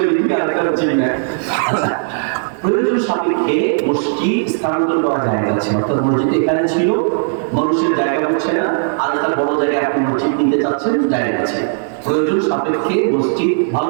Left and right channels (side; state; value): left; silent; digital silence